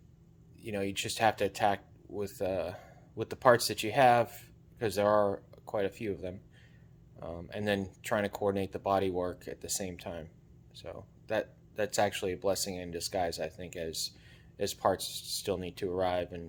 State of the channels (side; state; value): both; identical; correlation 1.00